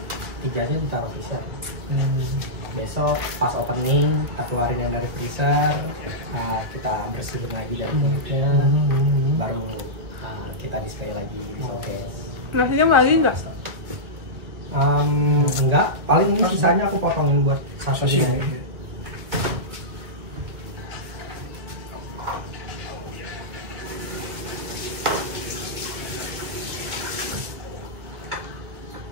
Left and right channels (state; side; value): late; left; 2.2 ms